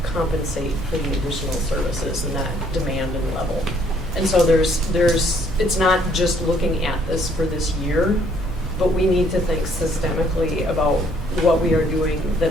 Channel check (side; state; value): both; normal; correlation 0.64